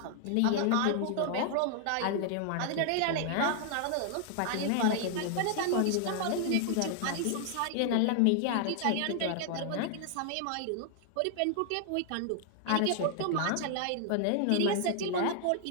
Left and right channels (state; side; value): different; both; correlation 0.00